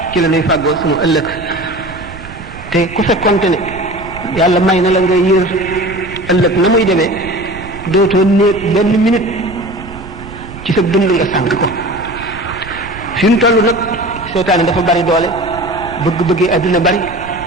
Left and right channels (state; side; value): noise; right; rumble, 14 dB below the sound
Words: ci la lay fàggoo sunu ëllëg te ku fekkonte ne yàlla may na la nga yër ëllëg na muy demee dootoo néet benn minute ci sa dund nga sànq ko fi mu toll nag seytaane dafa bari doole bëgg-bëggee àdduna bari